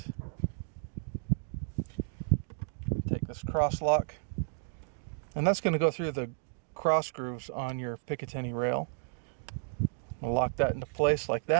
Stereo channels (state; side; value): silent; left; digital silence